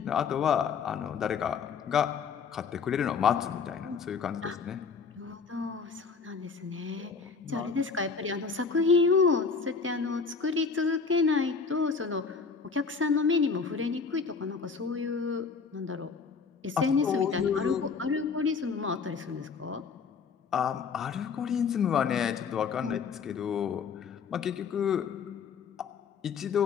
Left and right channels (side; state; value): right; quieter; 5.4 dB